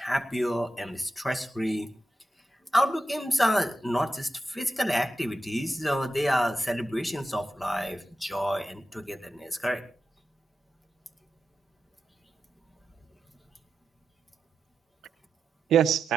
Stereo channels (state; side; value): normal; both; correlation 0.89